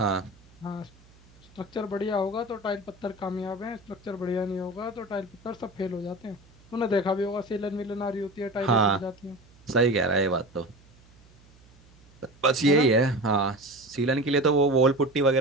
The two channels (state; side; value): noise; right; hum, 27 dB below the sound